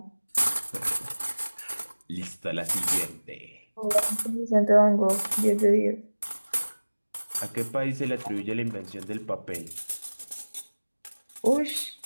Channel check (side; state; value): both; inverted; correlation -1.00